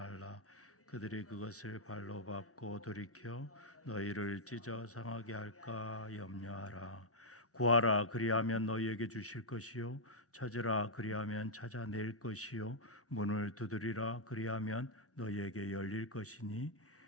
그들이 그것을 발로 밟고 돌이켜 너희를 찢어 상하게 할까 염려하라. 구하라, 그리하면 너희에게 주실 것이요 찾으라, 그리하면 찾아낼 것이요 문을 두드리라, 그리하면 너희에게 열릴 것이니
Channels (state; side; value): normal; both; correlation -0.06